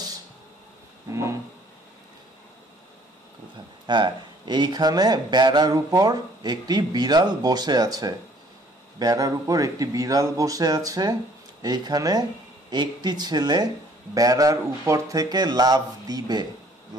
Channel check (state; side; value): normal; both; correlation 0.59